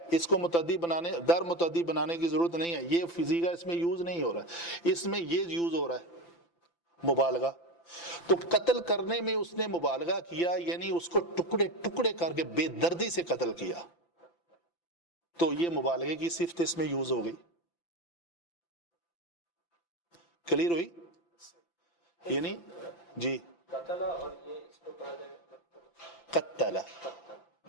اس کو متعدی بنانے در متعدی بنانے کی ضرورت نہیں ہے. یہ فزیکا اس میں یوز نہیں ہو رہا ہے, اس میں یہ یوز ہو رہا ہے مبالغہ. تو قتل کرنے میں اس نے مبالغہ کیا, یعنی اس کو ٹکڑے ٹکڑے کر کے بے دردی سے قتل کیا. تو یہ مبالغے کی صفت اس میں یوز ہو گئی. کلیئر ہوئی؟ یعنی جی قتل اور یہ اس کو پڑھا جائے قتل،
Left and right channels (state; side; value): late; right; 5.9 ms